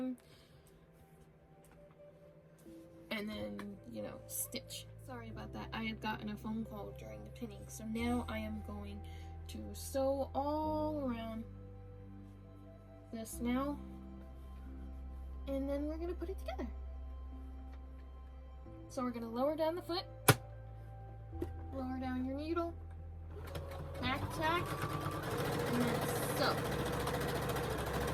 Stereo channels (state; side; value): identical; both; correlation 1.00